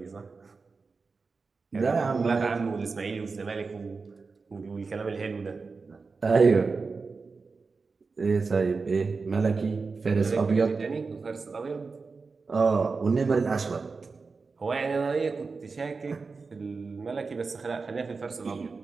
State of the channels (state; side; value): quieter; left; 4.4 dB